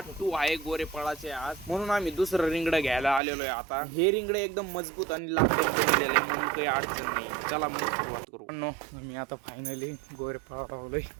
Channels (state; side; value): drops out; left; at 3.2 s